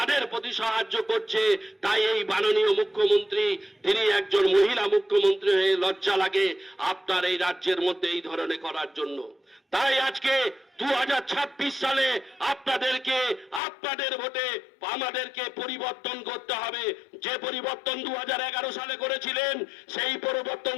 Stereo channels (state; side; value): drops out; right; at 13.6 s